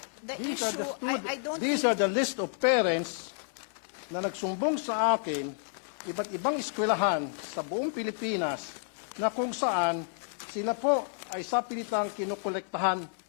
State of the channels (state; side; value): silent; right; digital silence